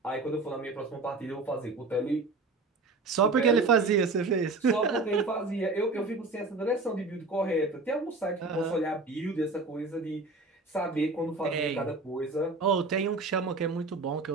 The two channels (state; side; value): quieter; left; 3.5 dB